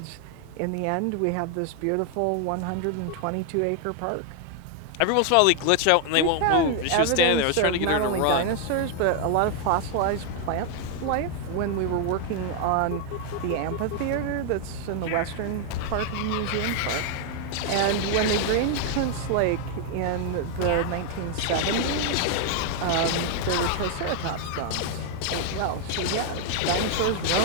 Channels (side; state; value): both; different; correlation 0.00